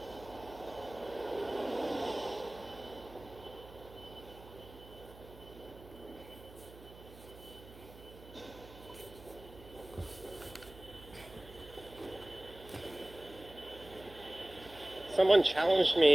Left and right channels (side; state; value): right; noise; hum, 19 dB below the sound